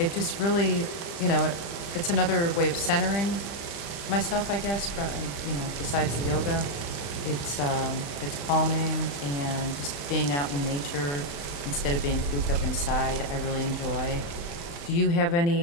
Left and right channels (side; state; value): right; late; 35 ms